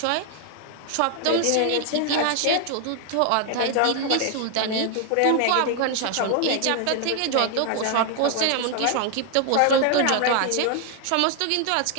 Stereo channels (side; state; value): both; different; correlation 0.00